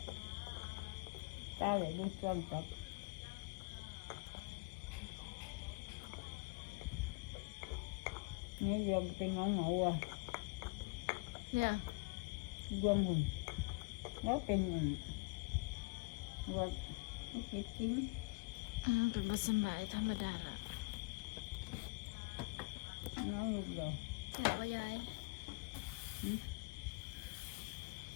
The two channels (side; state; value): right; quieter; 29.2 dB